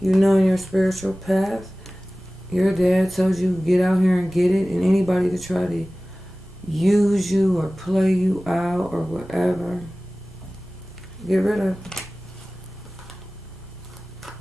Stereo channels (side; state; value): both; normal; correlation 0.98